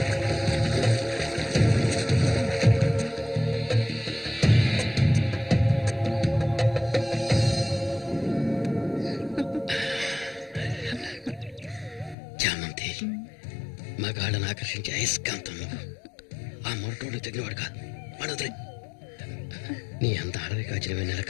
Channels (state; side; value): drops out; right; at 12.2 s